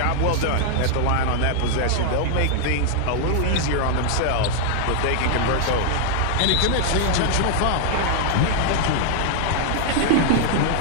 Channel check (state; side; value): different; both; correlation -0.01